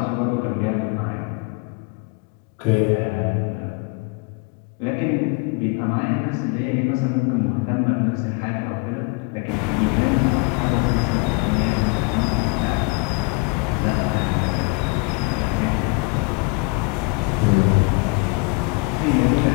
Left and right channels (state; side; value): quieter; right; 28.5 dB